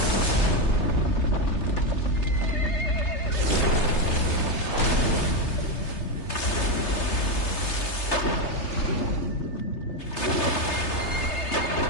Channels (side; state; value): right; late; 3.3 ms